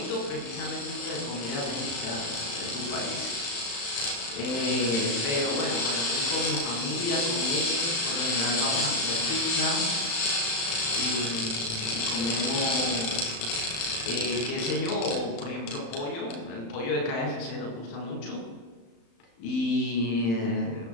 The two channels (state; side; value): late; right; 35 ms